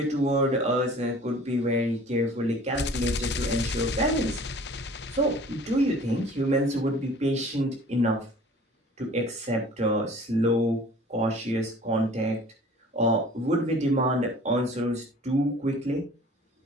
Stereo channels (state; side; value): normal; both; correlation 0.48